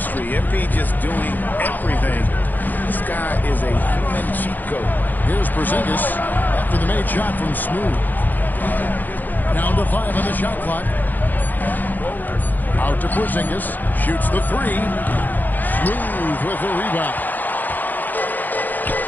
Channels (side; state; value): right; late; 0.085 ms